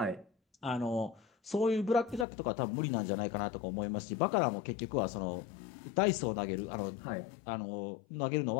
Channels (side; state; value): right; drops out; at 2.2 s